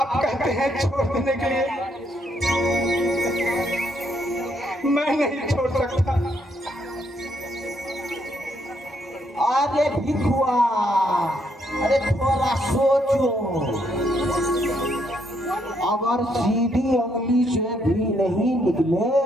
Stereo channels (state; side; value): normal; both; correlation 0.73